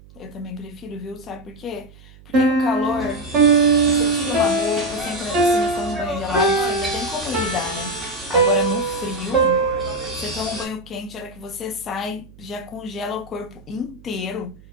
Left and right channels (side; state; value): right; noise; hum, 23 dB below the sound